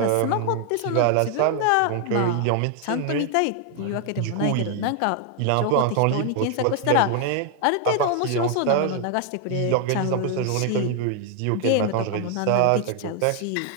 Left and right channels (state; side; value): different; both; correlation 0.00